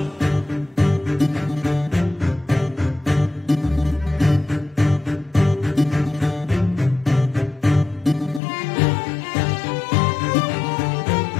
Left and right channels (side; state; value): right; drops out; at 8.4 s